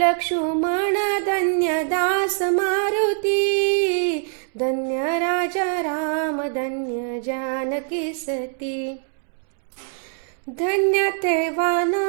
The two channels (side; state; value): left; silent; 63 dB below the other